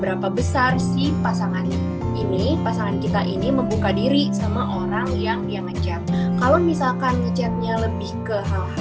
besar si pasangan kita ini membuka diri sama orang yang dia ngechat. Kalau misalkan ngechatnya lebih ke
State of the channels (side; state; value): both; identical; correlation 1.00